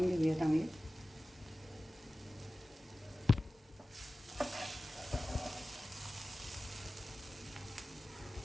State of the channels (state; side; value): normal; both; correlation 0.96